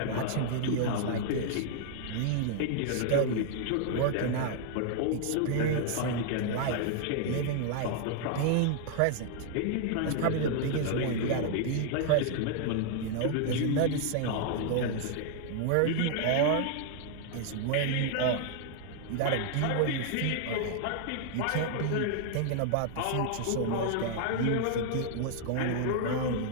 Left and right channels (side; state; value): both; different; correlation 0.00